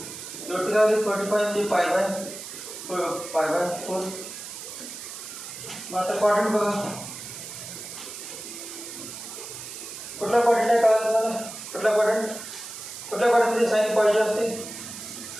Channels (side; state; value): right; noise; hiss, 10 dB below the sound